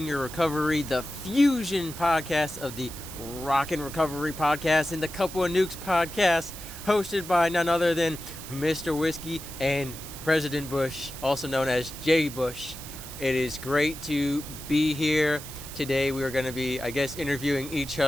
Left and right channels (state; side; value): noise; right; hiss, 12 dB below the sound